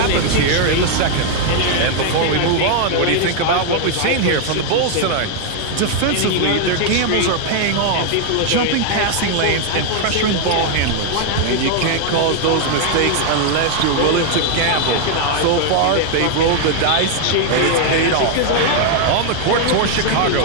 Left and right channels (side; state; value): both; different; correlation 0.00